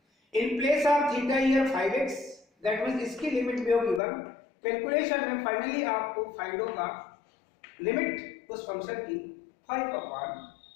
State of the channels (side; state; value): right; drops out; at 4.0 s